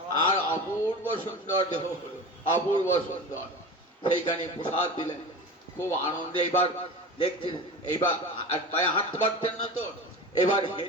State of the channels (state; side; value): normal; both; correlation 0.31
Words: আর অপূর্ব সুন্দর দেহ হলো, অপূর্ব সুন্দর। সেইখানে প্রসাদ দিলেন, খুব আনন্দে। এবার দেখছেন, এইবার পায়ে হাঁটতে পারতেন না তো, এবার